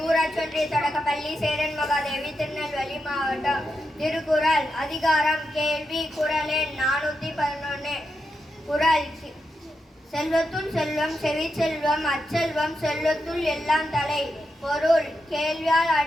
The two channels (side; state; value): both; normal; correlation 0.86